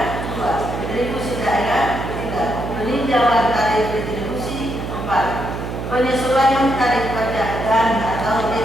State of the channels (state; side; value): noise; right; hum, 6 dB below the sound